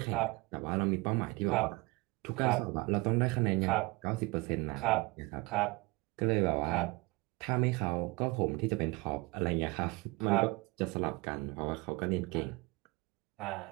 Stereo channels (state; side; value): quieter; left; 24.0 dB